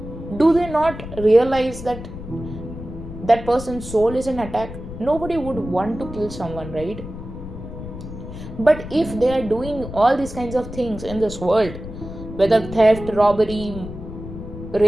Do they not realize that that person's soul is in attack? Nobody would want to kill someone, right? But if they are doing all these kinds of things in this world, whether theft, robbery,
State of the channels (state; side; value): noise; left; rumble, 11 dB below the sound